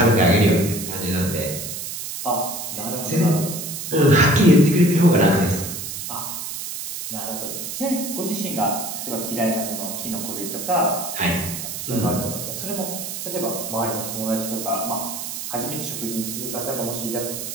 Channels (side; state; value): right; noise; hiss, 6 dB below the sound